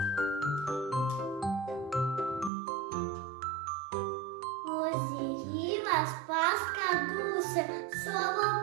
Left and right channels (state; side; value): drops out; left; at 2.5 s